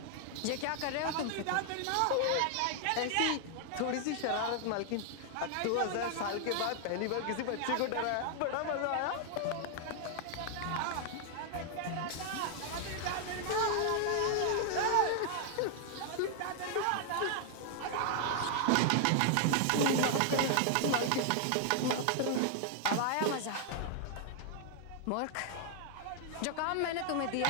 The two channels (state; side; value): different; both; correlation 0.00